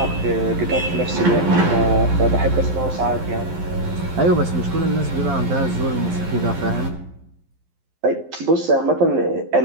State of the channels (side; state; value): left; late; 12 ms